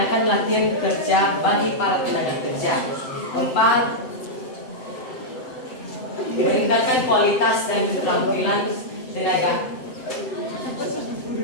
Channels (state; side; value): late; right; 7.8 ms